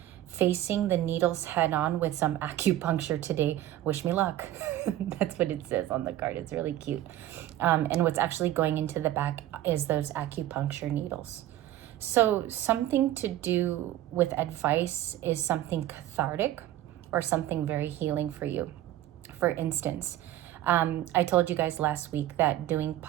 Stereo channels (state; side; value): quieter; left; 13.5 dB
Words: facing the needles head on with some acupuncture today. Wish me luck. That's what it says on the card. It's really cute. And what's actually going into the back is those acupuncture needles. So something to do with advice is something cathartic or something very healing for you. For instance, I told you guys last week that doing